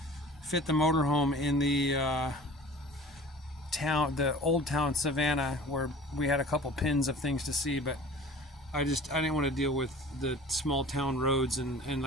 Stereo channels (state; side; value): normal; both; correlation 0.43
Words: fit the motorhome in the town, the old town Savannah, where we had a couple pins of things to see, but I didn't want to deal with the small town roads, and